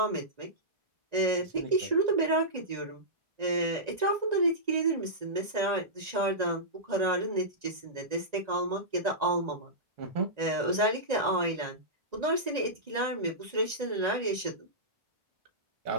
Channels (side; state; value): left; late; 1.9 ms